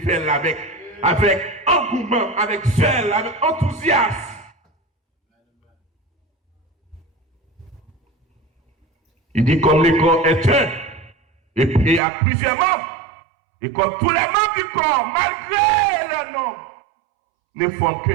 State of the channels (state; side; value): drops out; left; at 12.0 s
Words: là avec engouement, avec zèle, avec enthousiasme. Il dit comme le corps est un, et puis il y a plusieurs membres. Et comme tous les membres du corps, malgré leur nom, ne forment qu'un